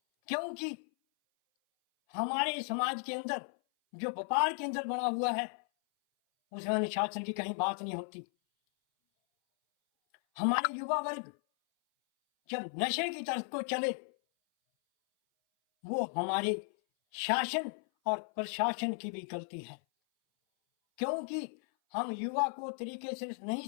क्योंकि हमारे समाज के अंदर जो व्यापार के अंदर बना हुआ है, उसमें अनुशासन की कहीं बात नहीं होती। हमारे युवा वर्ग जब नशे की तरफ को चले, वो हमारे शासन और प्रशासन की भी गलती है, क्योंकि हम युवा को तरीके से नहीं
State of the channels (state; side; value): silent; right; 54 dB below the other